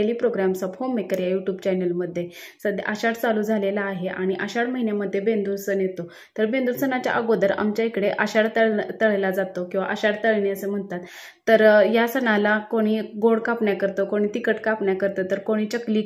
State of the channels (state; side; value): identical; both; correlation 1.00